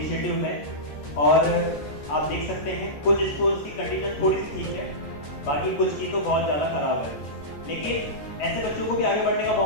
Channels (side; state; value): right; late; 14 ms